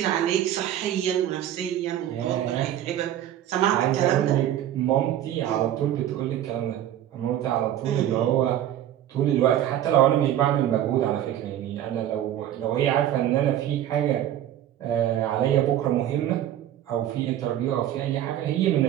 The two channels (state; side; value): quieter; left; 11.7 dB